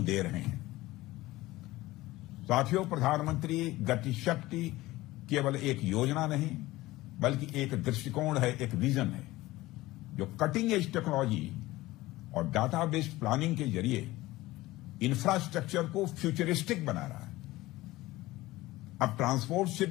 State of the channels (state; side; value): quieter; right; 18.2 dB